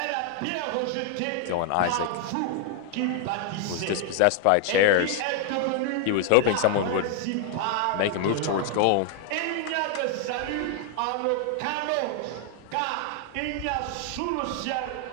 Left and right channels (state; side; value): different; both; correlation 0.00